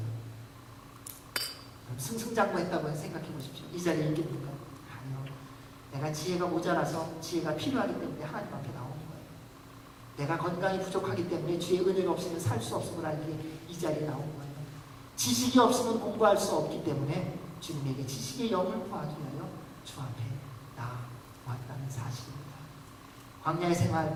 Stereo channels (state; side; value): identical; both; correlation 1.00